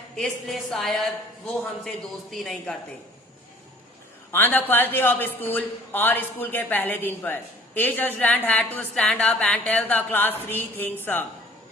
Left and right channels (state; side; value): normal; both; correlation 0.53